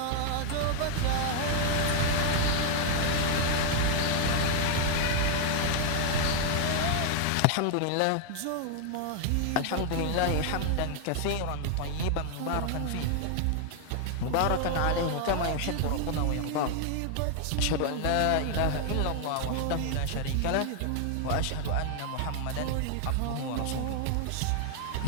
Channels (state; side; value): different; both; correlation 0.00